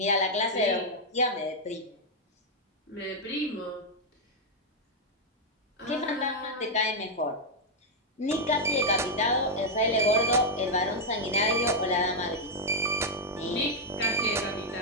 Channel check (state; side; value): normal; both; correlation -0.02